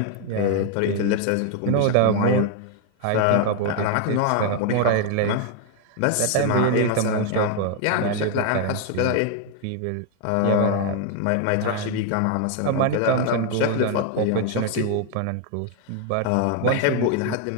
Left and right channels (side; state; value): both; different; correlation 0.00